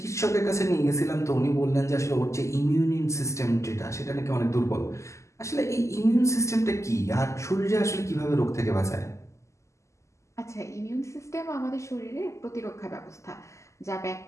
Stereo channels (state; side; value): late; right; 0.14 ms